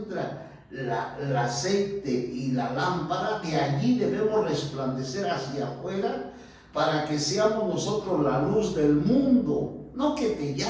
el aceite y la lámpara, de allí debemos resplandecer hacia afuera para que seamos nosotros la luz del mundo. No que te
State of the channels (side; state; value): both; identical; correlation 1.00